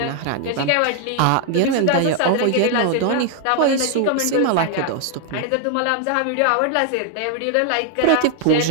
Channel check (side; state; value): both; different; correlation 0.00